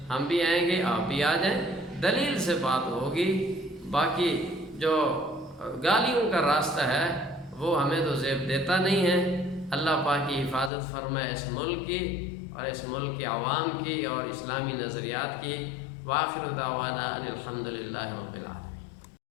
ہم بھی آئیں گے، آپ بھی آ جائیں، دلیل سے بات ہوگی۔ باقی جو گالیوں کا راستہ ہے وہ ہمیں تو زیب دیتا نہیں ہے۔ اللہ پاک کی حفاظت فرمائے اس ملک کی اور اس ملک کے عوام کی اور اسلامی نظریات کی۔ وآخر دعوانا ان الحمد للہ رب العالمین۔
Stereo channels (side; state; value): right; drops out; at 10.7 s